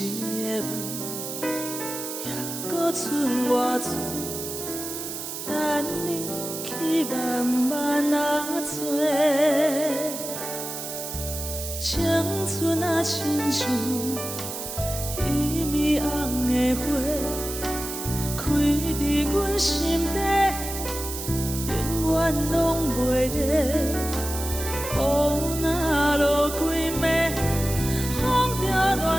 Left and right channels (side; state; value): right; noise; hiss, 7 dB below the sound